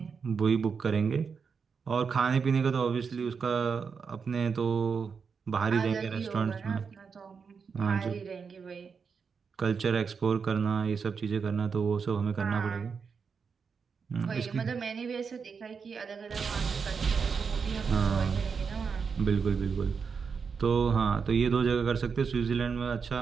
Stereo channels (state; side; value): quieter; left; 5.8 dB